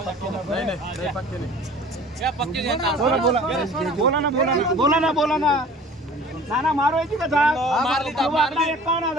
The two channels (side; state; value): both; normal; correlation 0.46